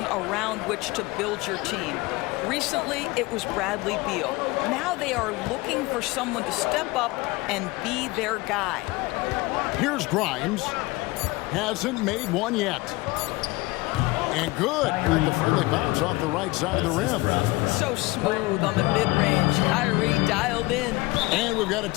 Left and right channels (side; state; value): right; quieter; 21.8 dB